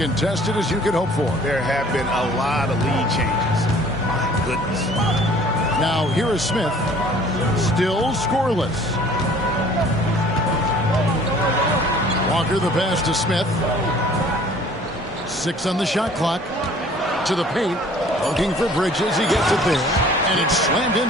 as you could hope for. There have been a lot of lead changes. My goodness. Now, here is Smith. Still scoreless. Walker the pass to Smith. 6 on the shot clock. To the paint. Looking for Bridges. He gets it there. And it's slammed in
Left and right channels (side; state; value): both; normal; correlation 0.52